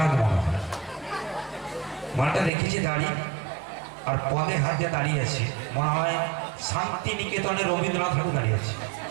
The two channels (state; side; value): drops out; left; at 2.5 s